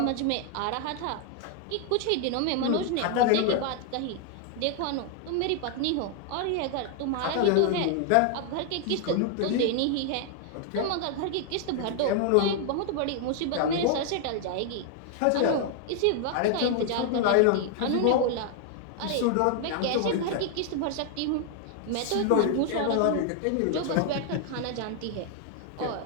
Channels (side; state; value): both; different; correlation 0.00